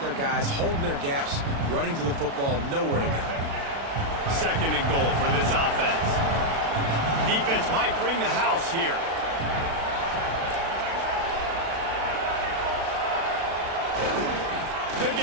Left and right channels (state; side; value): late; left; 36 ms